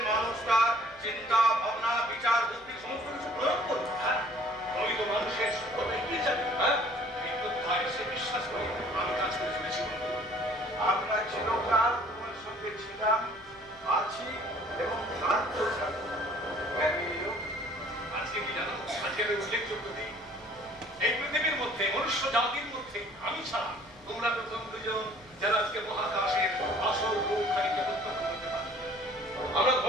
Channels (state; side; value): noise; left; hum, 26 dB below the sound